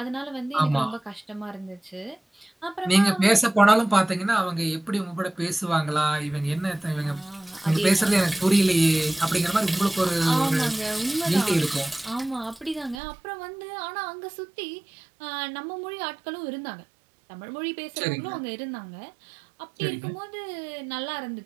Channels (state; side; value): drops out; left; at 13.0 s